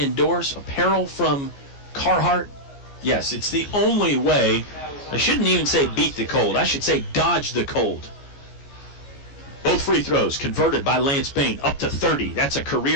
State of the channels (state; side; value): late; right; 14 ms